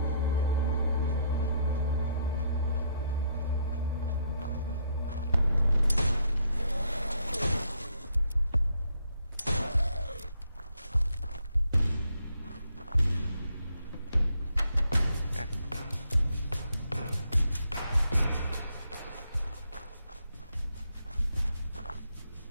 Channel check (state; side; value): inverted; both; correlation -0.73